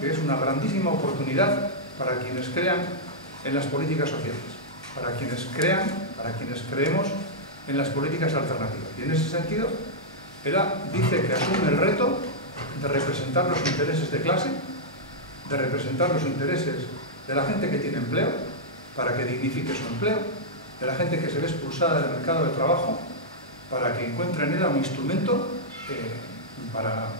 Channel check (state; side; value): normal; both; correlation -0.08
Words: es una grandísima oportunidad para quienes crean en las políticas sociales, para quienes creemos en las políticas alternativas. Y en ese sentido, ella dice que asume el reto de representar los intereses de clase, de representar los intereses de la gente que tiene empleo, para que dignifique su empleo, de la gente que se ve expulsada del mercado de trabajo, para que encuentre en ella un instrumento para